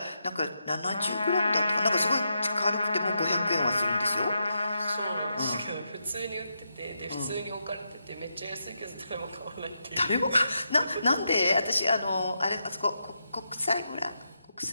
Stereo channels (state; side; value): inverted; both; correlation -0.84